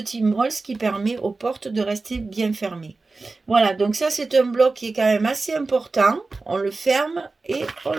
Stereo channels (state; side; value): quieter; left; 3.7 dB